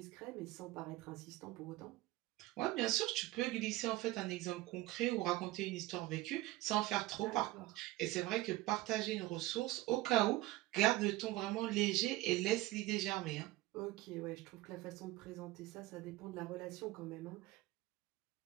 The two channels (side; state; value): left; quieter; 18.3 dB